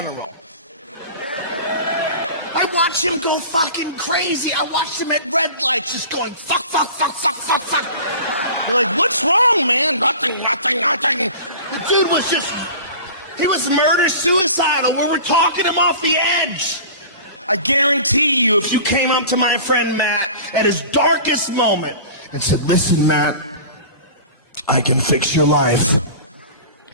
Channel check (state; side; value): inverted; both; correlation -0.38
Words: I watched him go fucking crazy. I watched him at red lights just going fuck, fuck, fuck, fuck, fuck, fuck. You're like, what's wrong, man? Nothing, nothing, nothing. The dude was just, he was murder-suicidal. We were talking him off the edge. I guarantee you, if you came up to my friend Matt at his darkest moment and said, listen, Matt, I can fix your life.